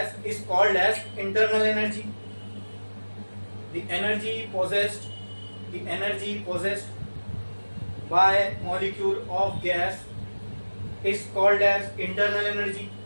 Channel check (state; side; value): inverted; both; correlation -1.00